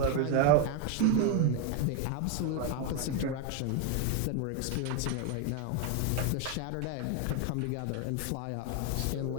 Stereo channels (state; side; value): different; both; correlation 0.01